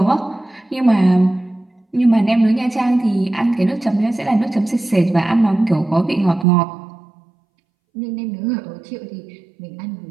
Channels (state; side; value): drops out; left; at 6.5 s